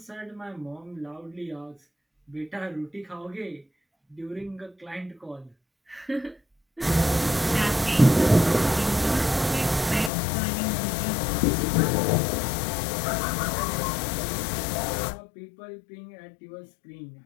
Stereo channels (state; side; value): drops out; right; at 10.1 s